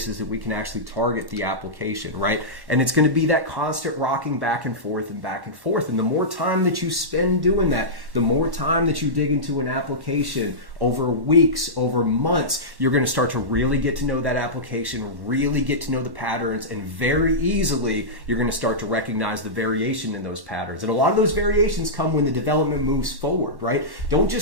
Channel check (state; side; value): late; left; 1.1 ms